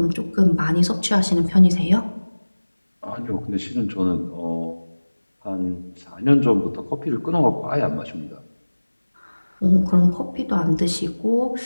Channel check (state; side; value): inverted; both; correlation -1.00